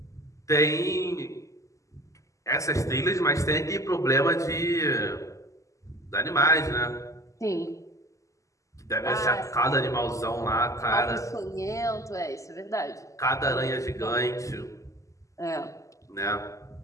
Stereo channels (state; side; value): late; right; 0.16 ms